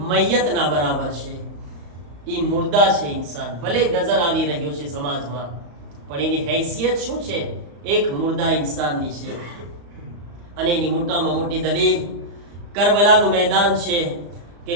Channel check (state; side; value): late; left; 35 ms